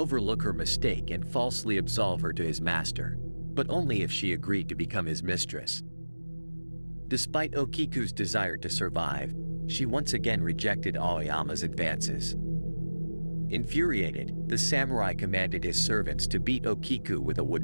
her mistake and falsely absolve her to his master, but only if she agreed to become his mistress. Despite Okiku's desire to survive, she once again rejected Aoyama's advances. Infuriated, the samurai commanded his servants to beat Okiku with a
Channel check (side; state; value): both; inverted; correlation -1.00